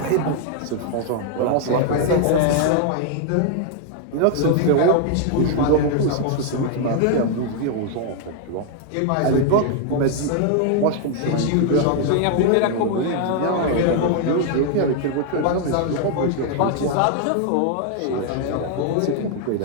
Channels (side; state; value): both; different; correlation 0.00